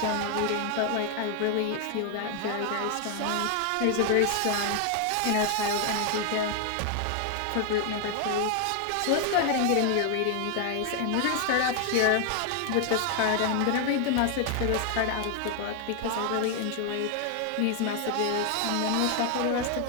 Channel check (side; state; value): both; different; correlation 0.00